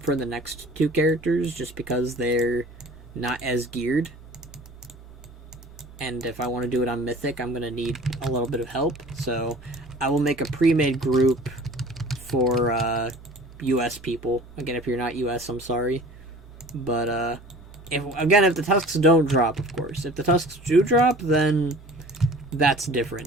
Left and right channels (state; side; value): normal; both; correlation 0.45